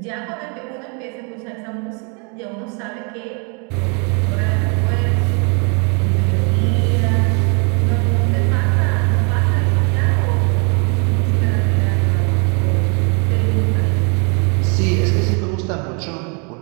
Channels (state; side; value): quieter; left; 35.2 dB